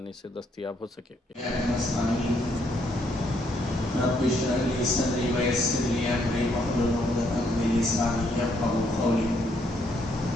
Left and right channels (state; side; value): normal; both; correlation 0.72